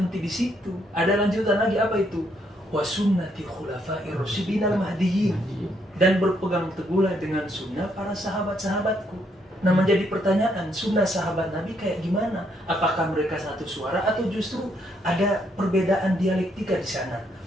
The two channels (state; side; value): normal; both; correlation 0.73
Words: di situ. Ada lanjutan lagi, apa itu? Wa sunnati khulafa'ir rasyidin al-mahdiyyin. Dan berpegang teguhlah dengan sunnah para sahabat-sahabatku. Nah, menjadi pertanyaan, sunnah sahabat Nabi kayak gimana? Apakah mereka satu suara atau justru ada perbedaan dialektika di sana?